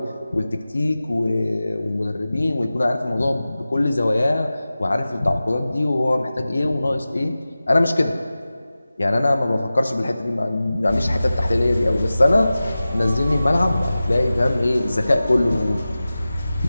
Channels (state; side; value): inverted; both; correlation -0.96